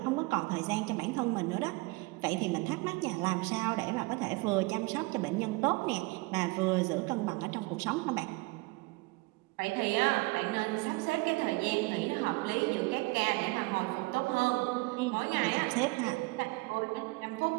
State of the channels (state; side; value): quieter; left; 24.7 dB